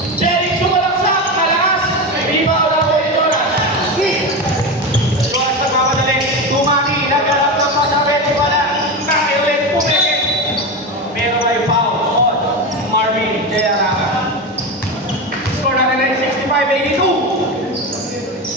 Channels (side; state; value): both; normal; correlation 0.20